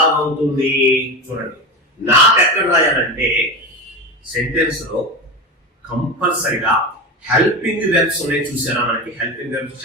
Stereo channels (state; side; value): normal; both; correlation 0.23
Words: అవుతుంది చూడండి. నాట్ ఎక్కడ రాయాలంటే సెంటెన్స్ లో కంపల్సరిగా హెల్పింగ్ వెర్బ్స్ ఉన్నాయి. చూసారా మనకి హెల్పింగ్ వెర్బ్స్?